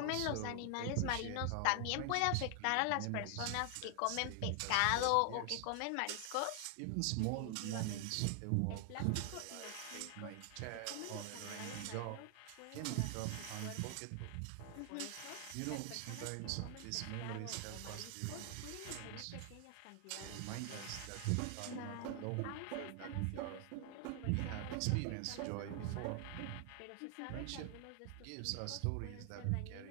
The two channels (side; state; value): both; different; correlation 0.00